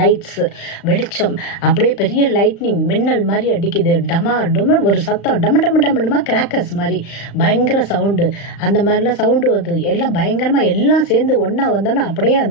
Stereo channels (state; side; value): late; right; 35 ms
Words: வெளிச்சம், அப்படியே பெரிய லைட்னிங் மின்னல் மாதிரி அடிக்குது. டமா டொம ஒரு சத்தம், டம டம டம கிராக்கர்ஸ் மாதிரி பயங்கர சவுண்டு. அந்த மாதிரிலாம் சவுண்டு வந்து எல்லாம் பயங்கரமா எல்லாம் சேர்ந்து ஒன்னா வந்தோன்னா அப்படியே